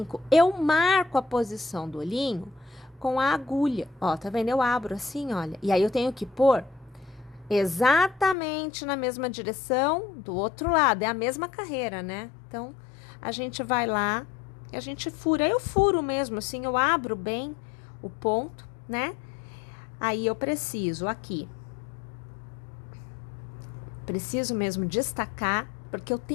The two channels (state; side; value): drops out; right; at 8.3 s